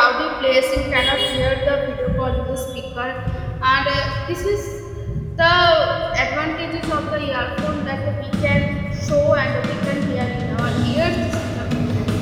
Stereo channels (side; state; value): both; identical; correlation 1.00